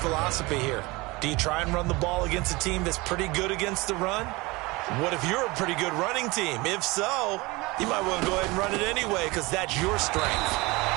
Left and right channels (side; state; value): left; quieter; 23.4 dB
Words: here? Do you try and run the ball against a team that's pretty good against the run? What if you're a pretty good running team? If so, you might want to go ahead and run it anyway because that's your strength.